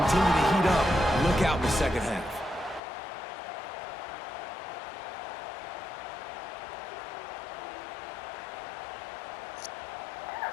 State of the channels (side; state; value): right; drops out; at 2.8 s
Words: to heat up, look out in the second half.